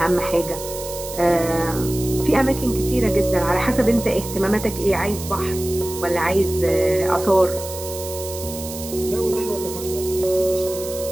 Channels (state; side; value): noise; right; hiss, 11 dB below the sound